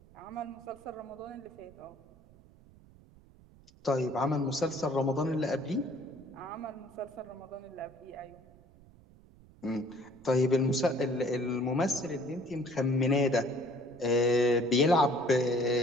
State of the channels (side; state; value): right; noise; rumble, 25 dB below the sound